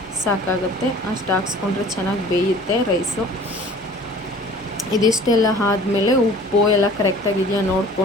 ಸಾಕಾಗುತ್ತೆ. ಅಷ್ಟು ಹಾಕ್ಸ್ಕೊಂಡ್ರೆ ಚೆನ್ನಾಗಿ ಬೇಯುತ್ತೆ ರೈಸು. ಇದಿಷ್ಟೆಲ್ಲ ಆದಮೇಲೆ ಉಪ್ಪು ಎಲ್ಲ ಕರೆಕ್ಟಾಗಿದೆಯಾ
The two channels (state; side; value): normal; both; correlation 0.47